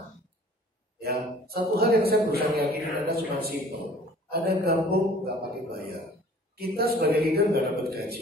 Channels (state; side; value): normal; both; correlation 0.50